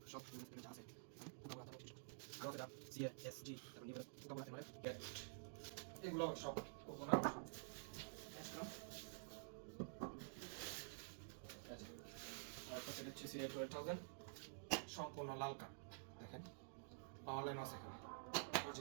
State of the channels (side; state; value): left; silent; digital silence